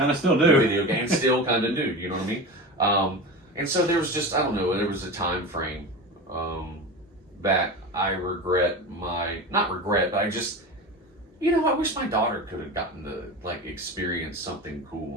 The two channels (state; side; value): normal; both; correlation 0.28